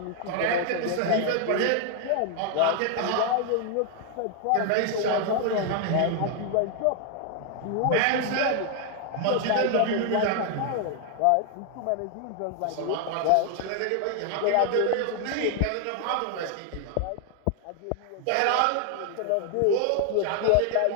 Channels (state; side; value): different; both; correlation 0.00